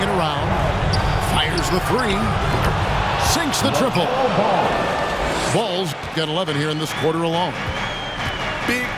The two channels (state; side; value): identical; both; correlation 1.00